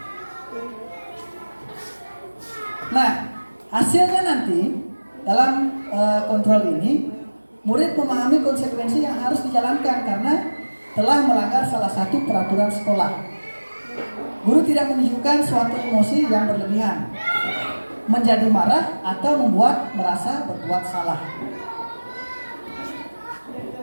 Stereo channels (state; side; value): inverted; both; correlation -1.00